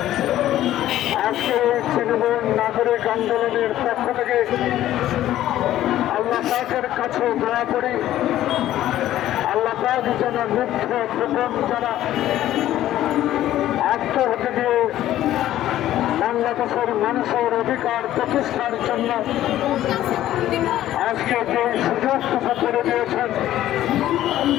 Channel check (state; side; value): quieter; right; 13.3 dB